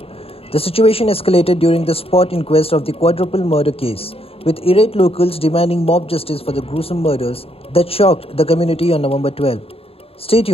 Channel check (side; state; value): right; late; 0.28 ms